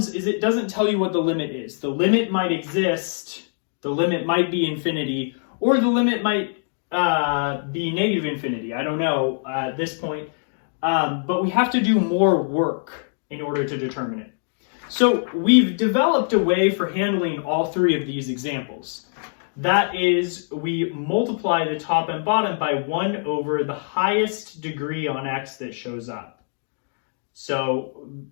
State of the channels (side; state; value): right; silent; digital silence